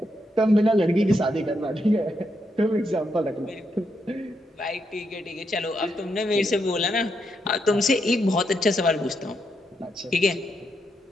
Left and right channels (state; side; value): normal; both; correlation 0.80